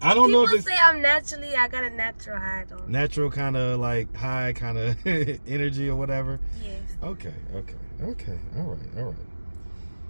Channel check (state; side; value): inverted; both; correlation -1.00